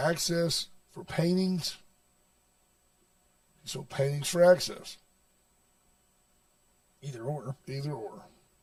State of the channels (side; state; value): both; identical; correlation 1.00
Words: for paintings. He sold paintings for access. Either or. Either or.